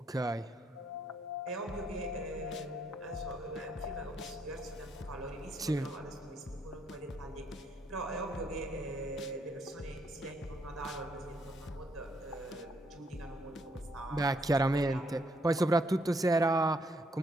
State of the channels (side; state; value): both; normal; correlation 0.72